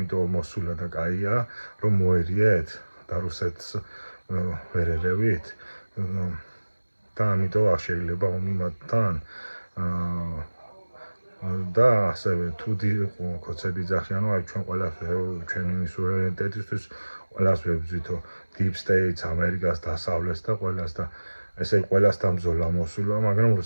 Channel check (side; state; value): both; inverted; correlation -1.00